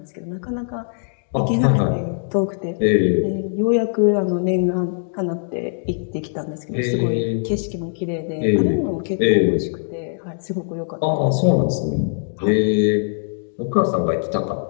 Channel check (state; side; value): silent; right; digital silence